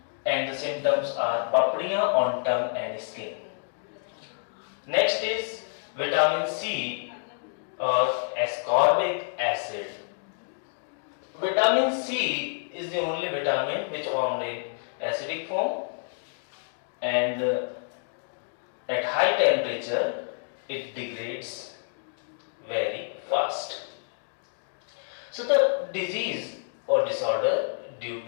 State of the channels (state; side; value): silent; right; digital silence